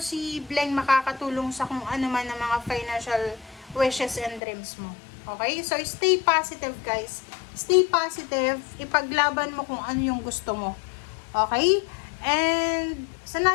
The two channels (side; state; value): right; drops out; at 4.4 s